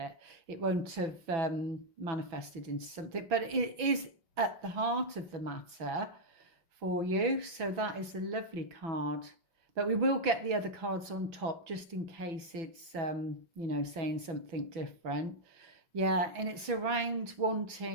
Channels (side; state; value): left; late; 6.0 ms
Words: It won't have manifested into something, but it is at the heart of the matter for you. So that is a lovely card, but we will get the other cards on top just in case it's you know, saying something different. Yeah, and it's around